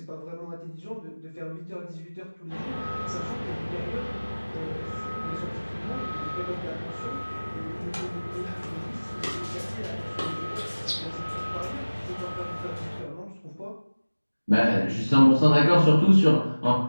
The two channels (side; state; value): both; inverted; correlation -1.00